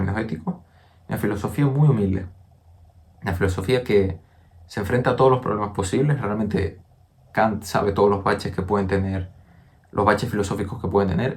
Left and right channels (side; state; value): both; identical; correlation 1.00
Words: éticos, una filosofía muy humilde, una filosofía que se enfrenta a todos los problemas posibles. Realmente Kant sabe todos los baches que pueden tener, los baches filosóficos que pueden